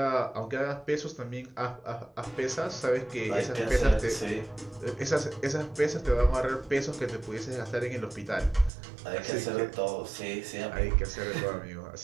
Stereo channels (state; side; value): drops out; left; at 8.7 s